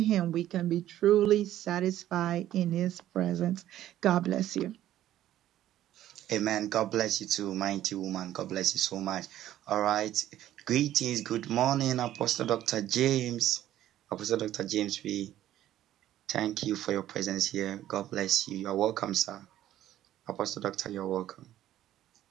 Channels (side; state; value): left; quieter; 12.8 dB